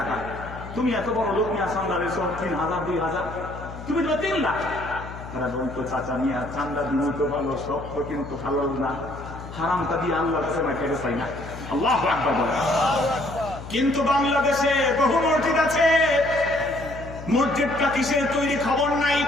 তুমি এত বড় লোক নিয়ে চান্দা দিয়েছ 3,000 2,000, তুমি তো 3 লাখ। তারা বলতো, চাচা নিয়ে চান্দা দিন তো ভালো, সব তো কিন্তু হালাল না, হারামটা দিয়ে আল্লাহর কাছে না খেতে চাই না। আল্লাহু আকবার বলে। কিন্তু বাংলাদেশে বহু মসজিদ আছে, মসজিদটা কিসের তৈরি খবর নাই।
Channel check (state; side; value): noise; left; hum, 12 dB below the sound